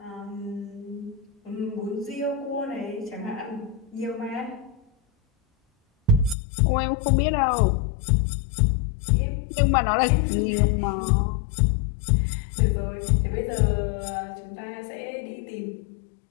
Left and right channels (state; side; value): drops out; right; at 6.4 s